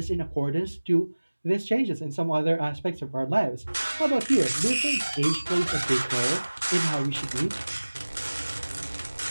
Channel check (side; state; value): both; inverted; correlation -1.00